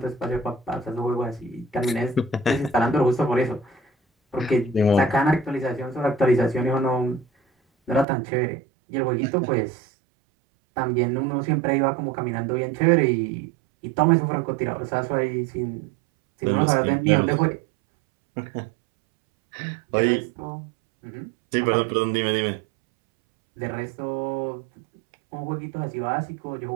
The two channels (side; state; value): left; drops out; at 8.1 s